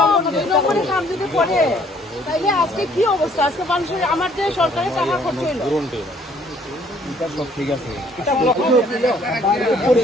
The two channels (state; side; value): normal; both; correlation 0.62